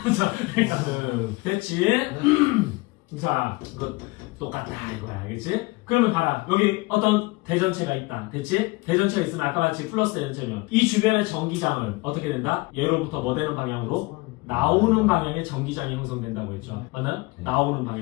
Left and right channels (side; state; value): right; quieter; 23.7 dB